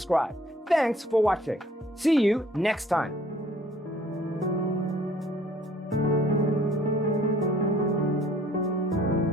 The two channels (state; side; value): normal; both; correlation 0.57